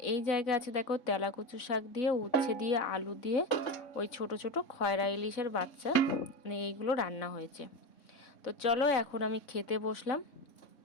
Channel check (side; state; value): right; late; 3.6 ms